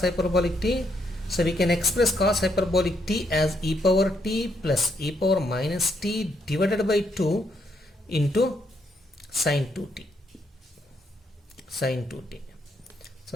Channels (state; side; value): normal; both; correlation 0.75